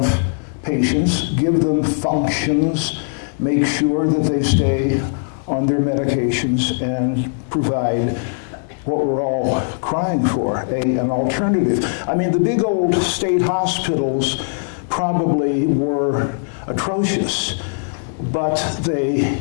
patients, give them functions, make sure that they stay on their medications, and provide what we're all crying for, an alternative. I mean, the big old state hospitals probably were atrocious, but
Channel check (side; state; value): right; silent; 62 dB below the other